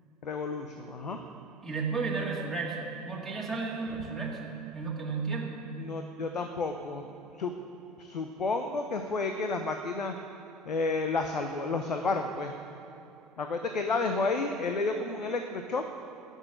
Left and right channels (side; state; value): both; normal; correlation 0.40